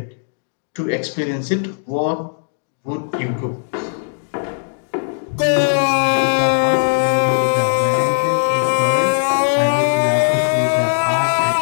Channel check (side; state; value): right; silent; digital silence